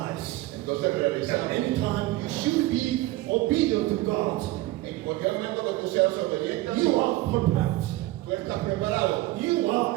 Entonces that realizamos. anytime you should be obedient to God, En cualquier momento que tú seas obediente, you are perfect. tú estás preparado. You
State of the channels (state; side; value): quieter; left; 17.7 dB